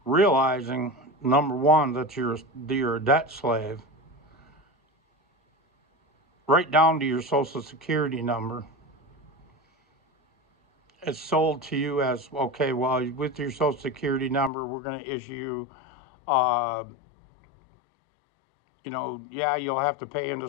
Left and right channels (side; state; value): right; drops out; at 14.5 s